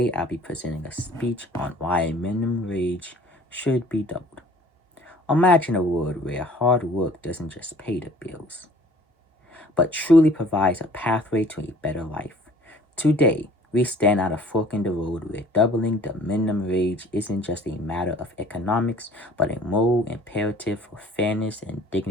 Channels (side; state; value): both; normal; correlation 0.52